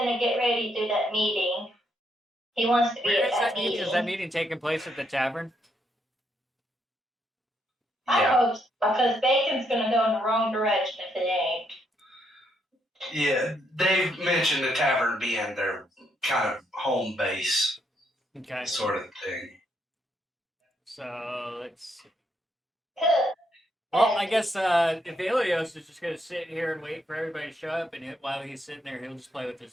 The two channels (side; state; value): both; normal; correlation 0.75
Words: get ready to do that meeting. He wants to be Where at is that meeting? meeting. Is that meeting taking place at the tavern? I Yeah. hope so, because Bacon's gonna go in the wrong direction if it ain't. Yeah, they've mentioned the tavern being their kind of home base Okay. sort of thing. So, let's see. Good. Well, I guess Ivellios is just going to sit here and wait for everybody to show up, and while he's sitting there, he'll just play with